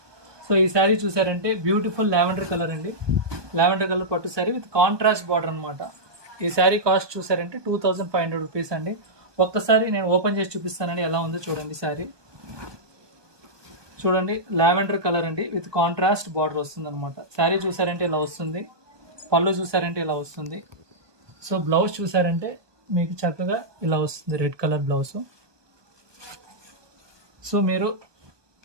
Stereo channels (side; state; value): left; late; 1.2 ms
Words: సో ఈ శారీ చూసారంటే బ్యూటిఫుల్ లావెండర్ కలర్ అండి. లావెండర్ కలర్ పట్టు శారీ విత్ కాంట్రాస్ట్ బార్డర్ అనమాట. ఈ శారీ కాస్ట్ చూసారంటే 2500 రూపీస్ అండి. ఒక్కసారి నేను ఓపెన్ చేసి చూపిస్తానండి ఎలా ఉందో చూడండి. శారీ చూడండి, లావెండర్ కలర్ అండి విత్ కాంట్రాస్ట్ బార్డర్ వస్తుంది అనమాట. శారీ చూసారంటే ఇలా వస్తుంది. పళ్ళు చూసారంటే ఇలా వస్తుంది. సో బ్లౌజ్ చూసారంటే మీకు చక్కగా ఇలా వస్తుంది, రెడ్ కలర్ బ్లౌజ్. సో మీరు